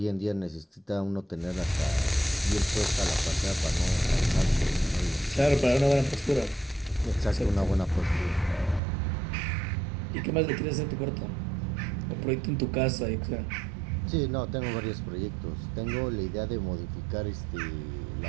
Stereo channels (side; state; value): left; drops out; at 8.8 s